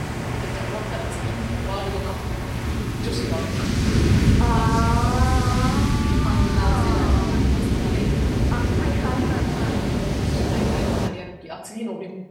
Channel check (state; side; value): identical; both; correlation 1.00